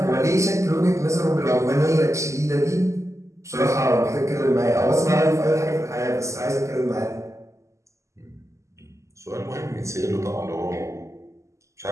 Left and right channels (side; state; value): left; late; 0.14 ms